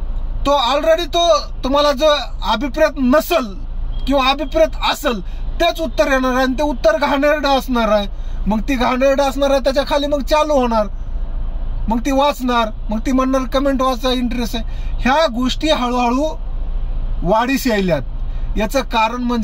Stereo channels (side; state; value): both; identical; correlation 1.00